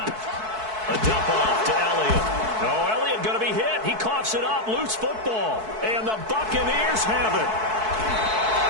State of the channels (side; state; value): left; late; 4.6 ms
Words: A dump off to Elliott. Oh, Elliott going to be hit. He coughs it up, loose football. And the Buccaneers have it.